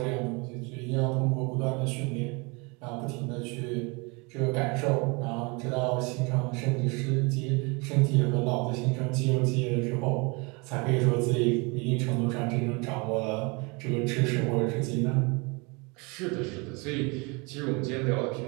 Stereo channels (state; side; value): quieter; left; 29.1 dB